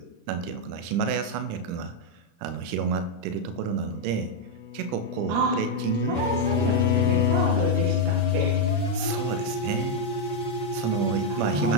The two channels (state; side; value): late; left; 35 ms